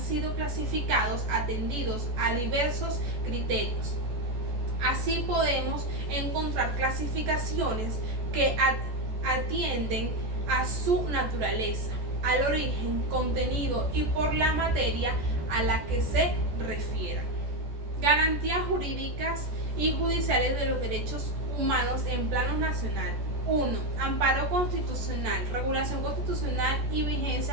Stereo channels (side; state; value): left; late; 14 ms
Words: clasificados atendidos a diversos criterios. Así podemos encontrar clasificaciones que atienden a su naturaleza, al origen, contenido y por la materia a la que se refieran. Garantías jurídicas y judiciales de los derechos humanos en plano nacional. 1. Amparo constitucional, regulación constitucional y